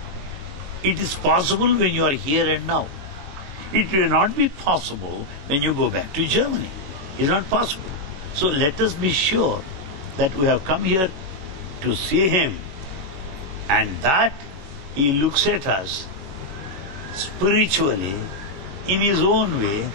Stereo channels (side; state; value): left; late; 21 ms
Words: it is possible when you are here and now. It will not be possible when you go back to Germany. It is not possible. So let us be sure that we have come here to see him, and that he looks at us spiritually, in his own way,